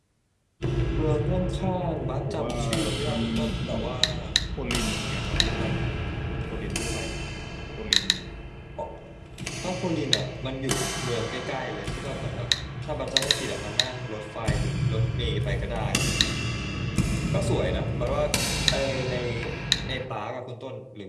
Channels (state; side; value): identical; both; correlation 1.00